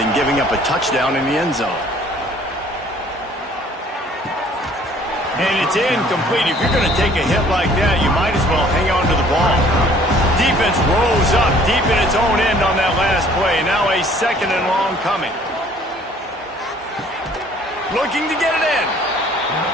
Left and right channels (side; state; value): both; normal; correlation 0.56